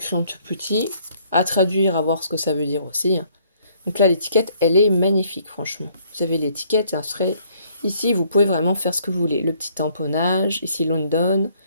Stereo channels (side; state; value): both; inverted; correlation -0.64